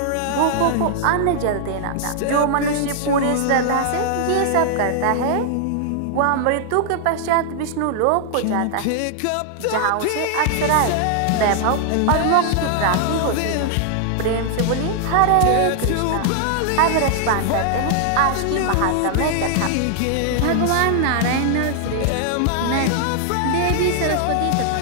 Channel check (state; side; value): different; both; correlation -0.01